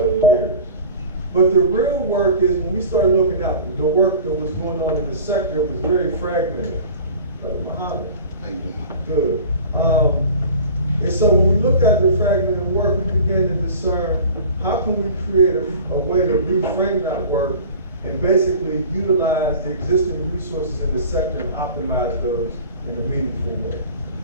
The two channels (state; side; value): inverted; both; correlation -0.40